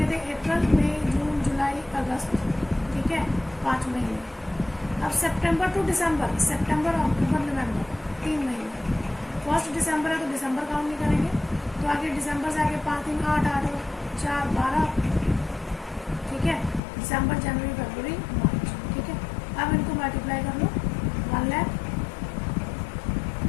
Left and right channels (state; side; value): drops out; right; at 16.8 s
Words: थे, अप्रैल मई जून जुलाई अगस्त, ठीक है, 5 महीने। अब सितंबर टू दिसंबर, सितंबर अक्टूबर नवंबर, 3 महीने। 1 दिसंबर है तो दिसंबर काउंट नहीं करेंगे, तो आगे दिसंबर से आगे 5 दिन 8 8 और 4 12, ठीक है, दिसंबर जनवरी फरवरी मार्च, ठीक है। अब इनको मल्टीप्लाई कर लो,